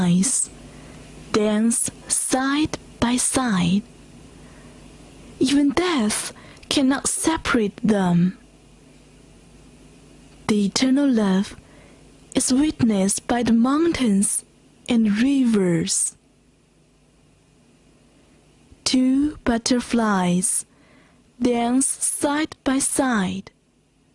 dance side by side. Even death cannot separate them. The eternal love is witnessed by the mountains and rivers. Two butterflies dance side by side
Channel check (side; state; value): both; identical; correlation 1.00